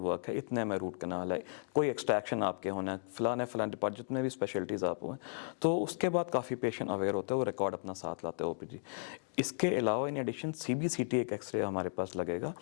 वर्क है, इतने में रूट कैनाल है, कोई एक्सट्रैक्शन आपके होना है, फलाने डिपार्ट जितने भी स्पेशलिटीज़ आप हुए। तो उसके बाद काफ़ी पेशेंट अवेयर होते हैं, वो रिकॉर्ड अपना साथ लाते हैं OPG। इसके अलावा इन एडिशन CBCT एक एक्सरे हमारे पास लगेगा,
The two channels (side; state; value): right; silent; digital silence